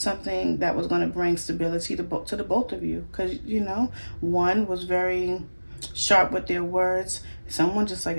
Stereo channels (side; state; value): both; inverted; correlation -1.00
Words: that was going to bring stability to the both of you, because you know, one was very sharp with their words. Someone just like,